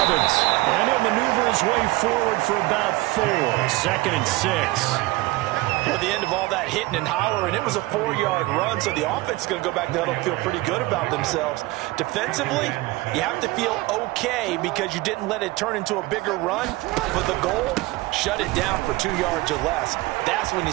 and he'll maneuver his way forward for about 4. 2nd and 6. At the end of all that hitting and hollering, it was a 4-yard run, so the offense is going to go back to huddle and feel pretty good about themselves. Defensively, you have to feel okay because you didn't let it turn into a bigger run. But the goal, shut it down for 2 yards or less. That's when you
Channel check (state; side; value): quieter; left; 20.4 dB